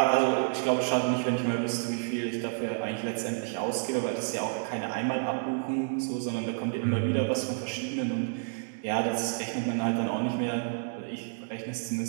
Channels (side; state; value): left; silent; digital silence